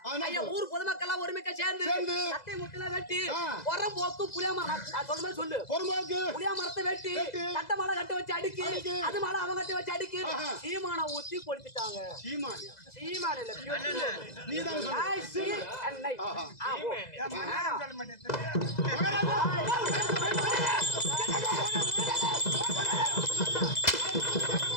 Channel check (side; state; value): right; late; 2.0 ms